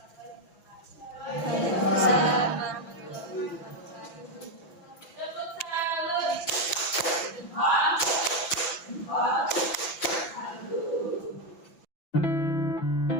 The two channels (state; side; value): late; right; 5.9 ms